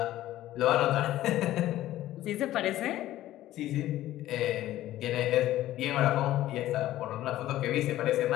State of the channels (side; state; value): right; quieter; 14.4 dB